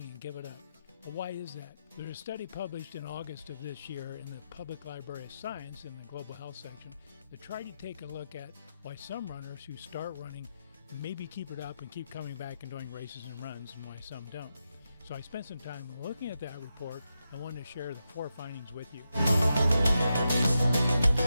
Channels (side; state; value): both; inverted; correlation -0.87